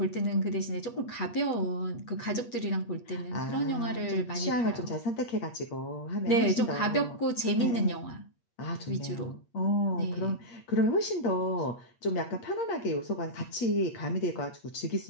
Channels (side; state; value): right; late; 8.4 ms